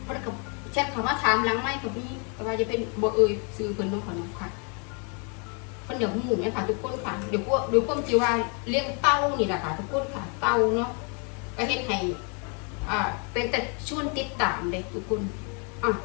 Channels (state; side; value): quieter; right; 36.8 dB